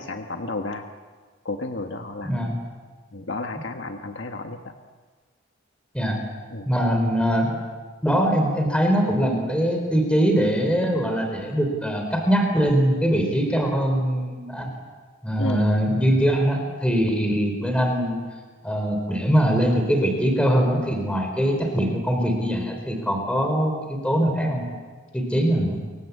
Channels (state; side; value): normal; both; correlation 0.78